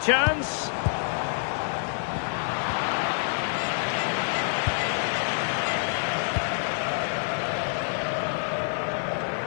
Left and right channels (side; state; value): right; silent; digital silence